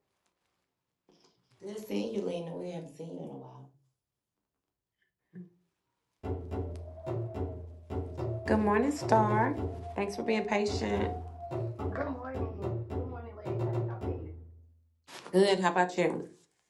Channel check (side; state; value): both; identical; correlation 1.00